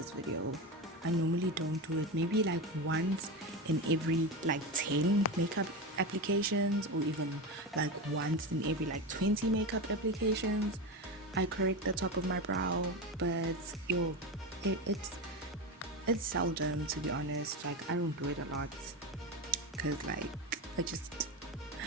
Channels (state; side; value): normal; both; correlation 0.20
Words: video. I normally don't do it, maybe like once in every like 10 makeup applications, or even like once in every like 20 makeup applications I correct the top of my brow. But it's seldom, to be honest. Like, I don't do it a lot because like it's